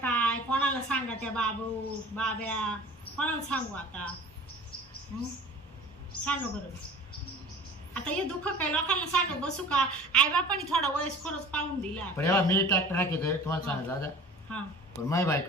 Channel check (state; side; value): normal; both; correlation 0.43